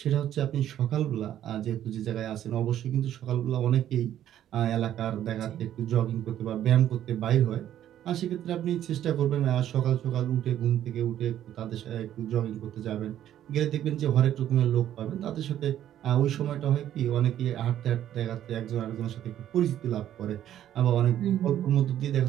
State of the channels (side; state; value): left; quieter; 11.4 dB